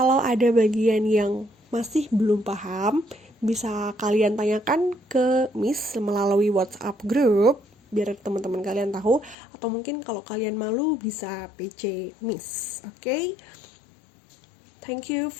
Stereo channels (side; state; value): right; drops out; at 9.3 s